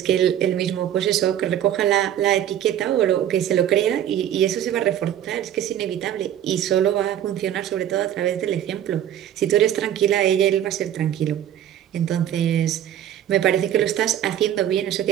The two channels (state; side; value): quieter; left; 10.9 dB